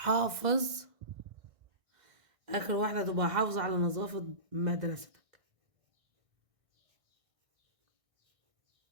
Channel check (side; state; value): left; late; 1.6 ms